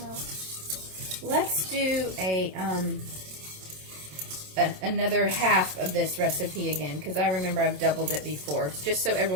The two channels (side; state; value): left; late; 27 ms